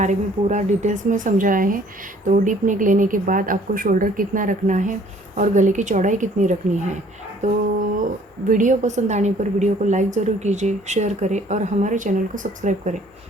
में पूरा डिटेल्स में समझाया है। तो डीप नेक लेने के बाद आपको शोल्डर कितना रखना है और गले की चौड़ाई कितनी रखनी है। तो वीडियो पसंद आने पर वीडियो को लाइक ज़रूर कीजिए, शेयर करें और हमारे चैनल को सब्सक्राइब करें।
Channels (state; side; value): normal; both; correlation 0.57